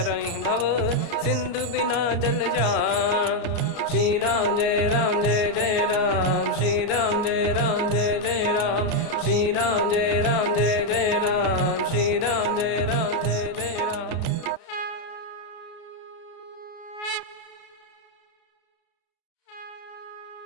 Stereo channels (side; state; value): right; late; 33 ms